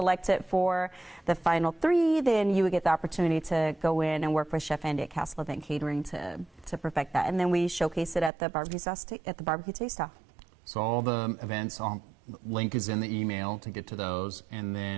for the final 3, then you would get the opportunity to go in and work with Chef Andy at Castle Event Catering to perfect that. And then we showcase it at the barbecue taste-off. So all the events, link is in the email to get to those. And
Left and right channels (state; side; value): drops out; left; at 8.3 s